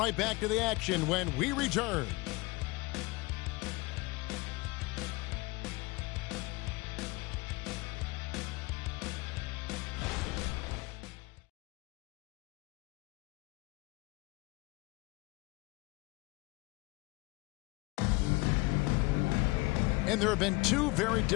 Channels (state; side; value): quieter; right; 23.3 dB